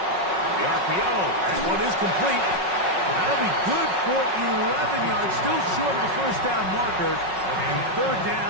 The RPO. That one is complete. That'll be good for 11 yards. Still short of the first down marker. And third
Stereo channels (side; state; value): left; late; 5.4 ms